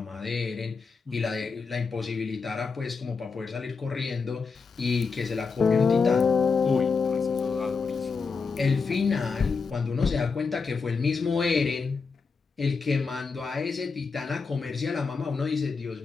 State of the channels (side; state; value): right; quieter; 4.9 dB